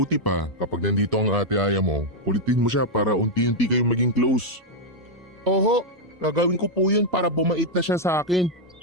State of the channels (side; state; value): both; normal; correlation -0.01